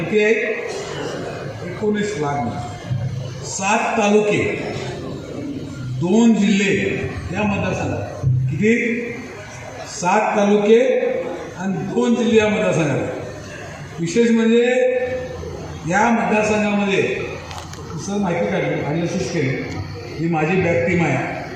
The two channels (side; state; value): both; identical; correlation 1.00